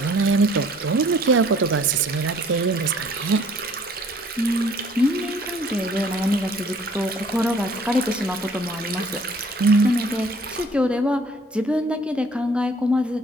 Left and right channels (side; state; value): both; normal; correlation 0.57